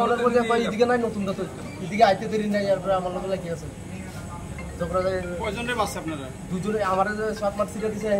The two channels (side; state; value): both; identical; correlation 1.00